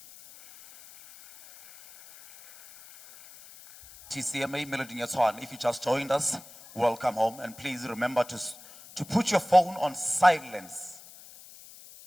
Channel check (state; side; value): noise; left; hiss, 20 dB below the sound